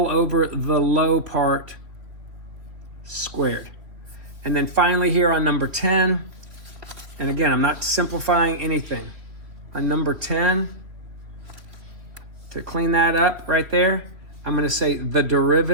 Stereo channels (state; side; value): late; left; 3.2 ms